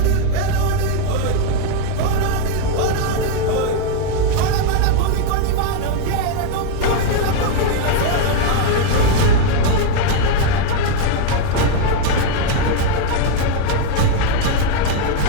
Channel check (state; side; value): different; both; correlation 0.01